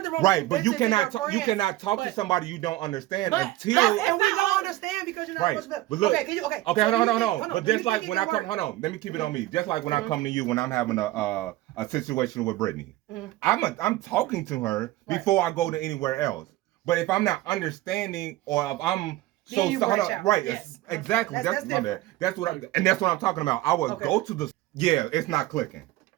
wrong with but you cannot talk to somebody you don't understand until... And we don't understand because you're not supposed to... But look, okay, hold on. But just like when I come... Hold on, let me keep it on me. Just like when I come to you when I'm having a situation with Brittany. I'm talking to her before I go to anywhere else. But if I'm not understanding or if I'm... Right, yes. Exactly. That's what I'm talking about. I would go to the... Yeah, it's not clicking.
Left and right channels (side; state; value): left; quieter; 16.8 dB